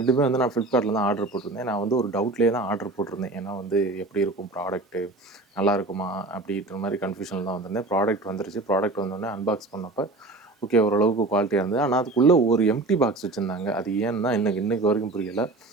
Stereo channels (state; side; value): quieter; left; 3.1 dB